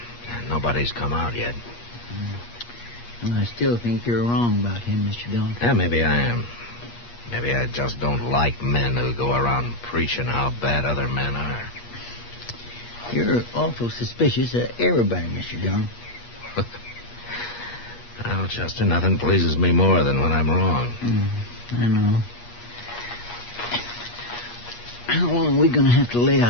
Nobody's come out yet. Well, I still think you're wrong about him, Mr. Dillon. Yeah, maybe I am. Maybe I just don't like men who go around preaching how bad other men are. You're awful suspicious of everybody, Mr. Dillon. Well, Chester, nothing pleases me more than when I'm wrong. I know. How long are we going to have to lay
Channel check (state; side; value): late; right; 8.4 ms